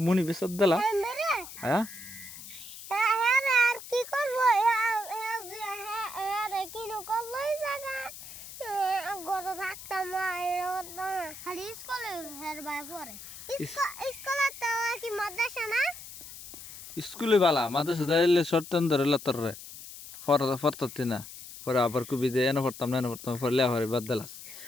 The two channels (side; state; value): left; noise; hiss, 14 dB below the sound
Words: মুনি বেসত দিলা হ্যাঁ আর কি করবো কি নকলই জায়গা গরো থাকতাম খালি স্কুলে হের বাই পরে স্কুলে তো কি মাদ্রাসা না স্কুলে বালা মাদ্রাসা যাইলে শর্টন ধরে লতর রে ফরততি না পরে আবার কুবি যে এনে পড়তাম না এনে পড়তাম পরে লেফারে বাদ দিলাস